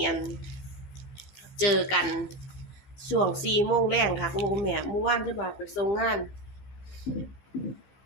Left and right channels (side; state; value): right; late; 15 ms